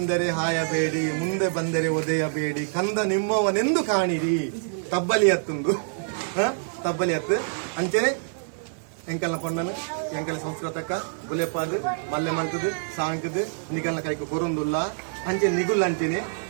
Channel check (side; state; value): left; silent; digital silence